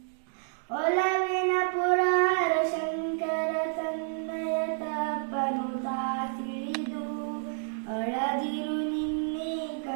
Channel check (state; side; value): silent; left; digital silence